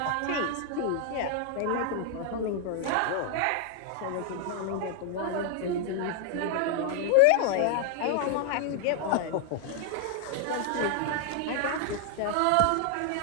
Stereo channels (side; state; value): both; different; correlation 0.00